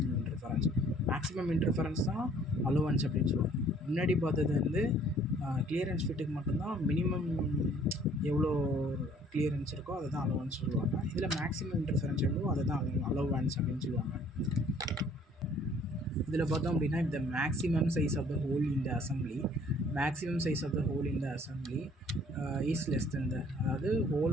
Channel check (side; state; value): both; normal; correlation 0.57